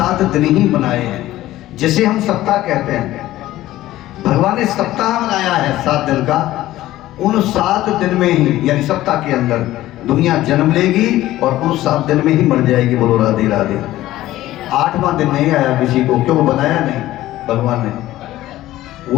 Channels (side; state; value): right; quieter; 15.3 dB